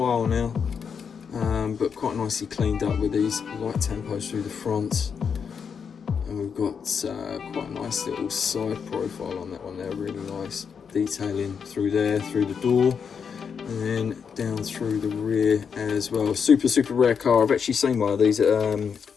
now, but quite nicely cleaned up with these light tempos through the front. And we've got quite a nice little side profile on that one there, really nice detailing through there, through the door. and then down through the rear as well. Super rare car. I've actually seen one of these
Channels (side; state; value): right; quieter; 6.6 dB